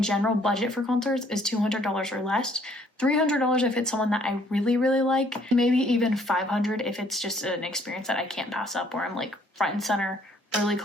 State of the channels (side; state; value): both; normal; correlation 0.63